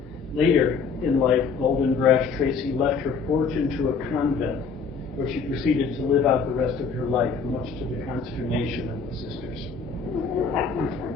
Later in life, Golden Brash Tracy left her fortune to a convent, where she proceeded to live out the rest of her life, much to the consternation of the sisters.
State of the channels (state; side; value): quieter; right; 5.3 dB